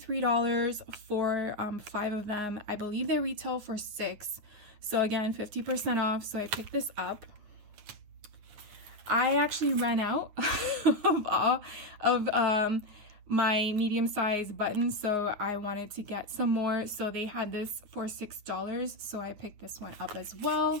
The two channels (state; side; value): late; left; 9.5 ms